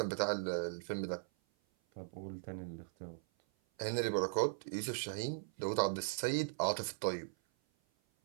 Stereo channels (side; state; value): left; silent; 52 dB below the other